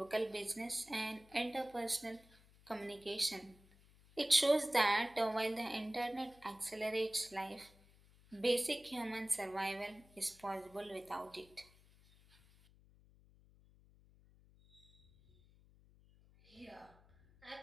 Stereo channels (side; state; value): left; noise; hum, 26 dB below the sound